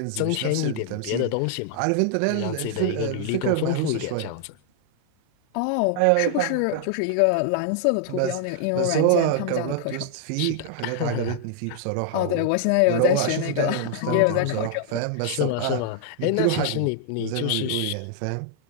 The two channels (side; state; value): both; different; correlation -0.01